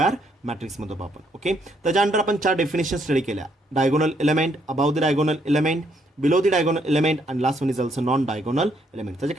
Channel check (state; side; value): normal; both; correlation 0.71